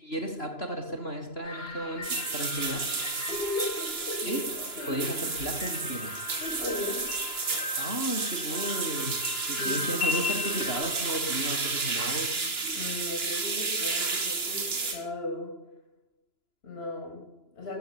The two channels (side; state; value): right; late; 2.9 ms